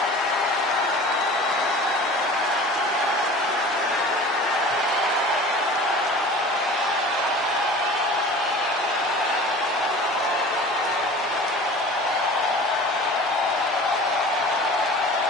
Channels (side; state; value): both; normal; correlation 0.40